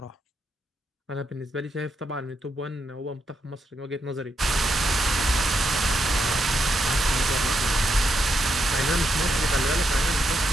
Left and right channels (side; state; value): both; normal; correlation 0.81